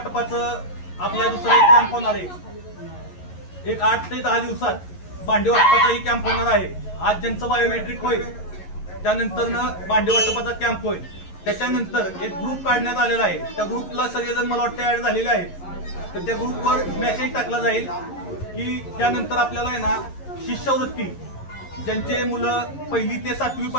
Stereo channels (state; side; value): late; right; 11 ms